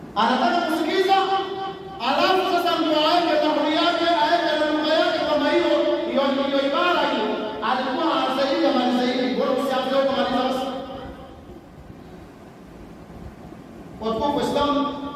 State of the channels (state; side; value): identical; both; correlation 1.00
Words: anataka kusikiliza, alafu sasa ndio aende tahuri yake, aende na lugha yake, kama hiyo ibara hiyo alikuwa anasaidia malizaidi, bora usianze huko maliza basi. Watu wa Islam,